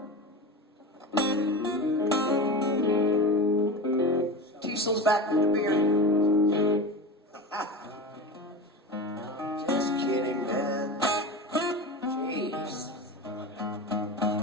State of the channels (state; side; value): normal; both; correlation 0.26